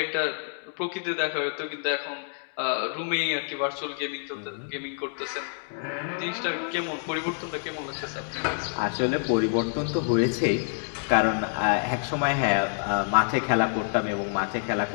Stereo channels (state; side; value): silent; right; 60 dB below the other